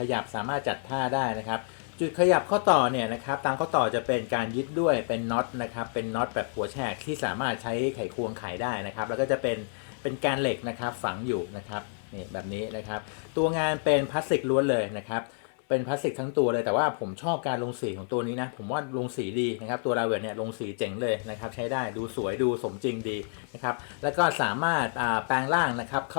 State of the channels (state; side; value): silent; right; 56 dB below the other